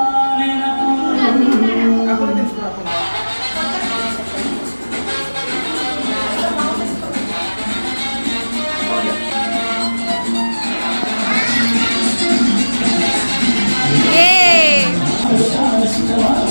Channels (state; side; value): inverted; both; correlation -1.00